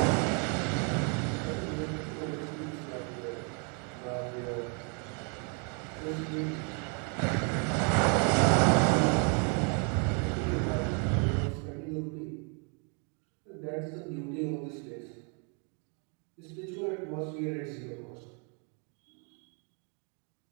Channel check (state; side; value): quieter; left; 37.6 dB